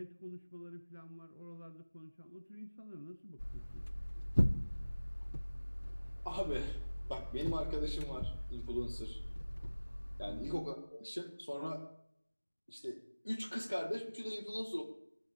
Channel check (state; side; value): inverted; both; correlation -1.00